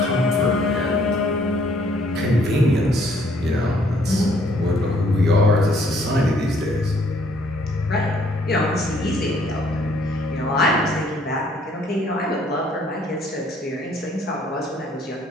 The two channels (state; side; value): normal; both; correlation 0.64